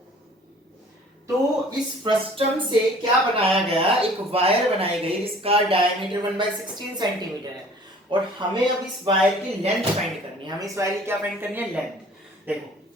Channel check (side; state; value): both; normal; correlation 0.50